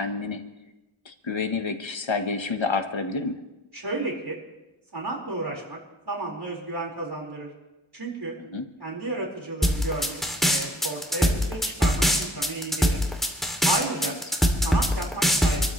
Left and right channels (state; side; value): normal; both; correlation 0.55